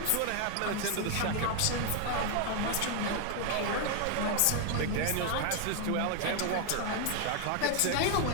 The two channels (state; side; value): different; both; correlation 0.01